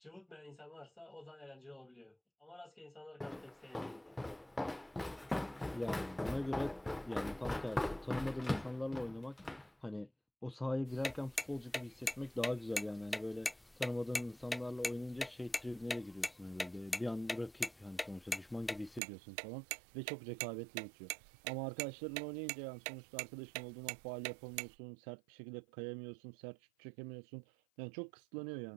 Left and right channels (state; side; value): drops out; left; at 19.0 s